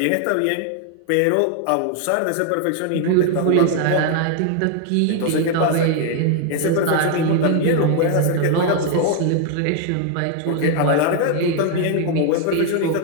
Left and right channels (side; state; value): both; different; correlation 0.00